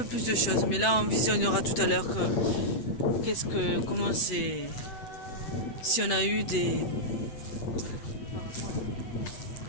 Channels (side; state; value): right; late; 7.9 ms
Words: plus de choses. Mais là, on visionnera tout à l'heure comment c'est... Si on a eu des